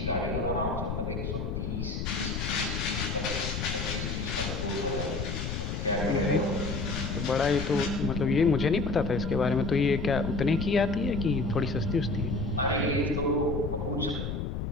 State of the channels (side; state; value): left; noise; rumble, 3 dB below the sound